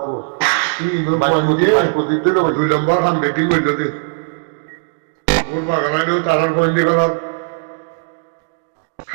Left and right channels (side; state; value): left; silent; digital silence